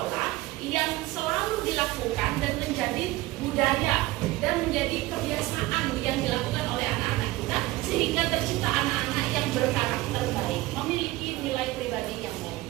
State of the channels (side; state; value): left; quieter; 18.9 dB